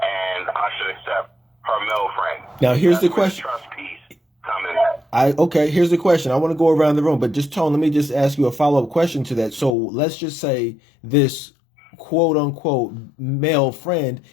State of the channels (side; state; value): right; drops out; at 9.8 s